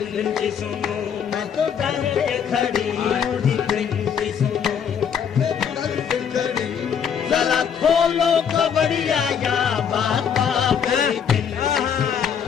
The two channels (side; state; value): right; quieter; 7.7 dB